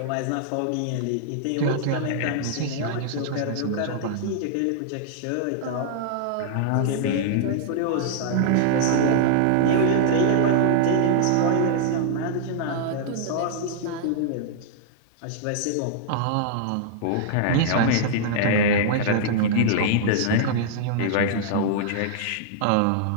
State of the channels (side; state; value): both; different; correlation -0.01